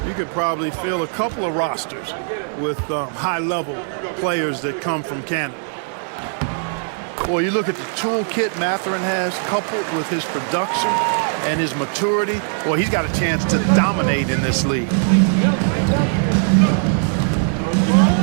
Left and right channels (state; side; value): silent; left; 57 dB below the other